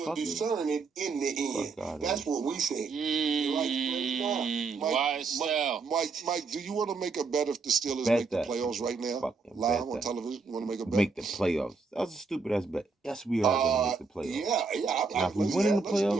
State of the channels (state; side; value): quieter; left; 4.5 dB